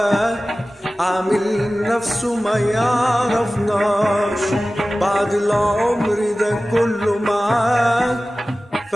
عامل نفسه ما يعرفناش، بعد العمر ده كله معاك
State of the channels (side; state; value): both; normal; correlation 0.96